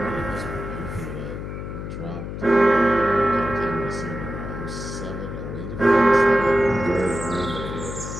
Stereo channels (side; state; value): left; noise; hum, 7 dB below the sound